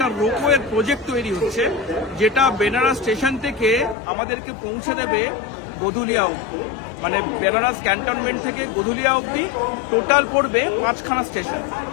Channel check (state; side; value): drops out; right; at 4.0 s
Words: রোপওয়ের প্রজেক্ট তৈরি হচ্ছে, যেটা বেনারস স্টেশন থেকে আমাদেরকে পৌঁছে দেবে গধুলিয়া অবধি। মানে বেনারস ক্যান্টনমেন্ট থেকে গধুলিয়া অবধি টোটাল পড়বে 5খানা স্টেশন।